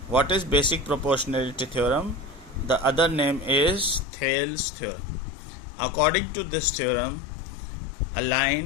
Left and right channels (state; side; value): drops out; right; at 4.0 s